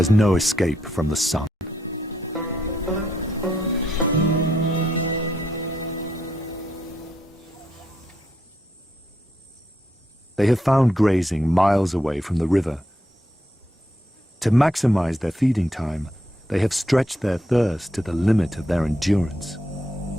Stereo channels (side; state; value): both; normal; correlation 0.77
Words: no escape from the sun. They have found grazing miles away from the river. To maximize their feeding time, they have stretched their thirst to the limit of their endurance.